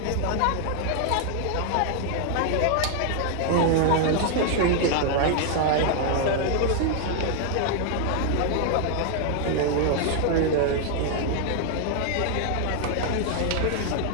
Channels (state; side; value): different; both; correlation 0.00